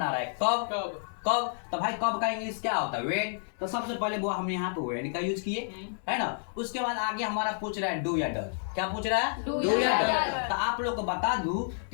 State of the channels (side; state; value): right; silent; digital silence